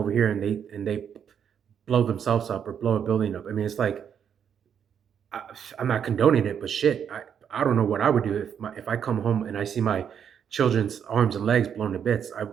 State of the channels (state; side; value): quieter; left; 8.1 dB